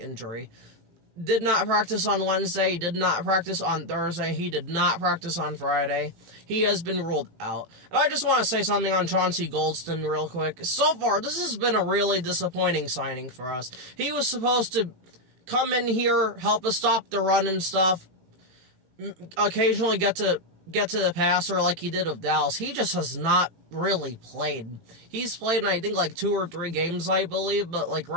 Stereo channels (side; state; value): left; late; 18 ms